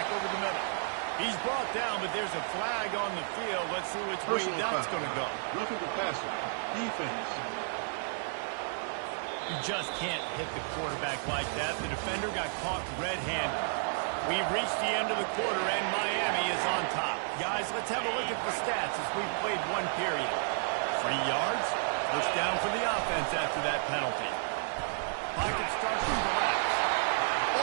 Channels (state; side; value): silent; left; 56 dB below the other